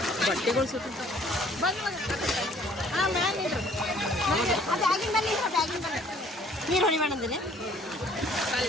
ಬಟ್ಟೆಗಳು ಸುತ್ತ ನೀರು ಹೊಡಿಬೇಡ ಅಂದಿನಿ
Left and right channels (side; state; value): both; normal; correlation 0.58